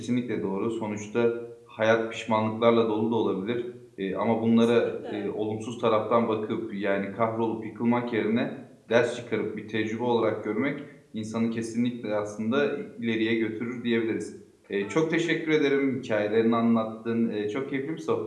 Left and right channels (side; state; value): both; identical; correlation 1.00